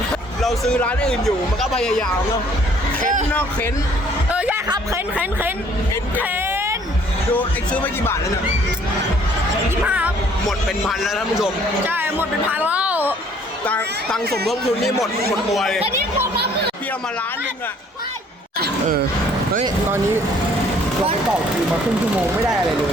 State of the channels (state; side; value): normal; both; correlation 0.59